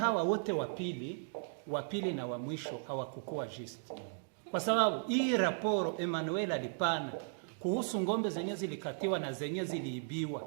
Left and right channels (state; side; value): silent; left; digital silence